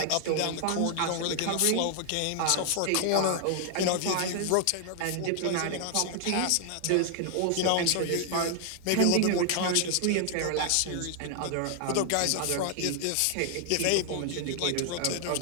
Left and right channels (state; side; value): different; both; correlation 0.00